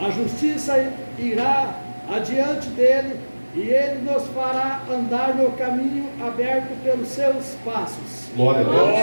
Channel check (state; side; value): inverted; both; correlation -1.00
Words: justiça irá adiante dele, e ele nos fará andar no caminho aberto pelos seus passos. Glória a Deus.